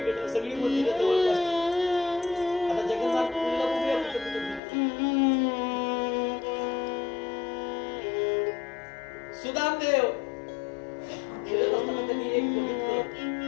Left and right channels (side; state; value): right; drops out; at 4.6 s